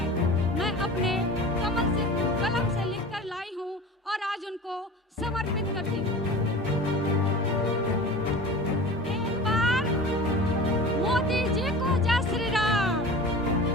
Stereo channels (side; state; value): both; normal; correlation 0.36